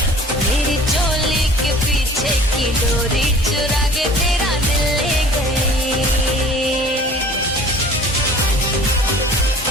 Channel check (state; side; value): normal; both; correlation 0.47